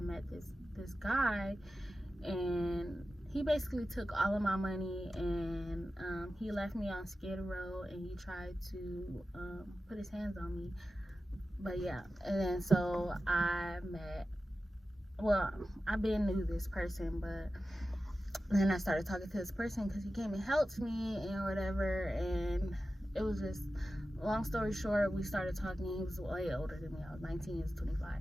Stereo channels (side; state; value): both; normal; correlation 0.93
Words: met this guy, and he basically took all of my money, and he left me on Skid Row, and he tried to put his hands on me. But yeah, and then so I've been knew this person, but then I started talking to this person because he came and helped me and whatever, and it was just, long story short, we started talking. He was way older than me. I was 19, he was 25.